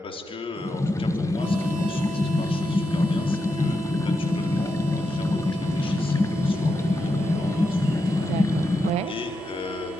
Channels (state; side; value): normal; both; correlation 0.86